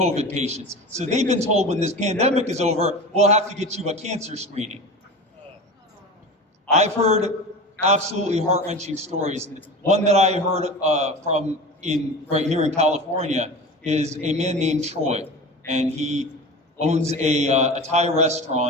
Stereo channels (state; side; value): normal; both; correlation 0.31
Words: patients. So they've been told when this pandemic is over, we'll have to get you a cancer screening. I've heard absolutely heart-wrenching stories. One that I heard right here in California is a man named Troy, and he owns a Thai